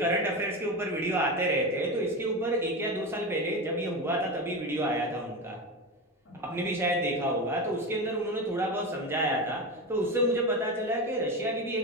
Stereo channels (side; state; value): both; normal; correlation 0.21